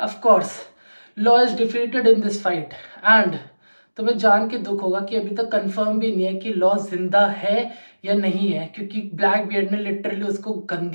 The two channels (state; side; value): inverted; both; correlation -1.00